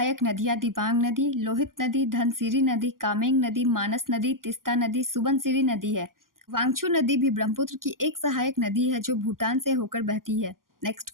नदियां दिबांग नदी, लोहित नदी, धनसिरी नदी, कामेंग नदी, मानस नदी, तिस्ता नदी, सुबनसिरी नदी है। वांगचू नदी भी ब्रह्मपुत्र की एक सहायक नदी है, जो भूटान से होकर बहती है। नेक्स्ट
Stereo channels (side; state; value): left; late; 0.91 ms